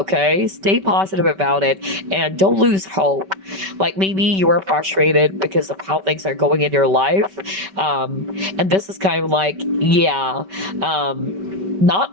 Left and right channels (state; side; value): late; left; 5.2 ms